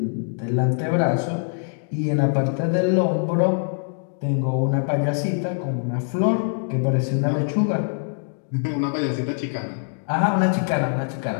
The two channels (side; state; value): right; silent; digital silence